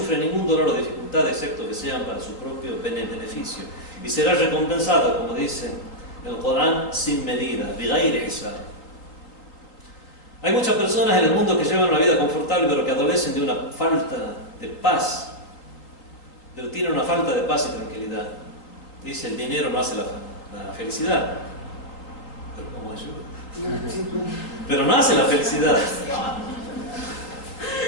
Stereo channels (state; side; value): late; right; 3.7 ms